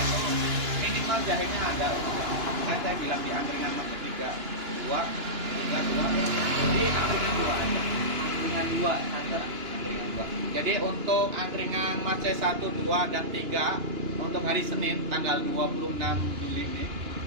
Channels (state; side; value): late; left; 2.9 ms